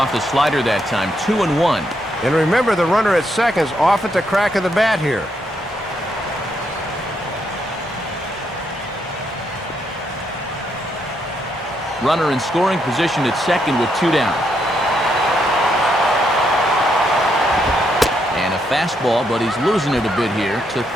the slider that time, 2-1. And remember, the runner at second's off at the crack of the bat here. Runner in scoring position at second with 2 down. And a fastball, but he's losing it a bit here to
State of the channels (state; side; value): normal; both; correlation 0.77